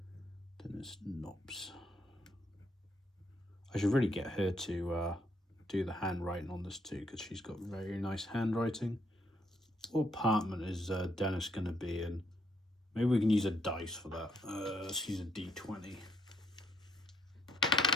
Dennis Knobs. I should really get her to do the handwriting on this too, because she's got very nice handwriting. What apartment is Dennis going to be in? Maybe we can use a dice for that. Let's use a D20.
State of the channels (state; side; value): normal; both; correlation 0.72